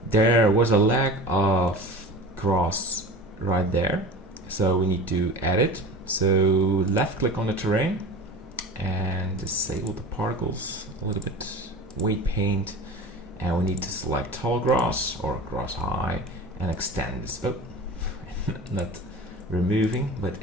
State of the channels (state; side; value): normal; both; correlation 0.35